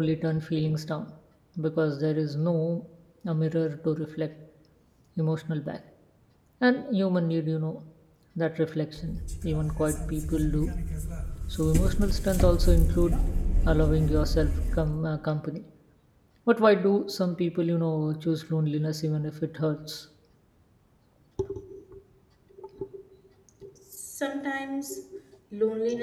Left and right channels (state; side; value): identical; both; correlation 1.00